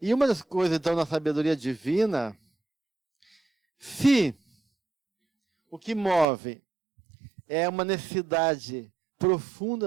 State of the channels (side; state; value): left; drops out; at 6.2 s